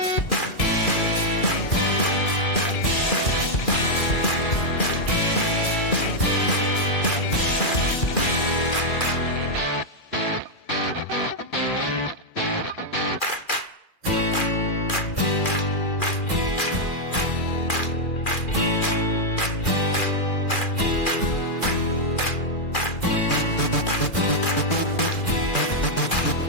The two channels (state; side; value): late; right; 2.4 ms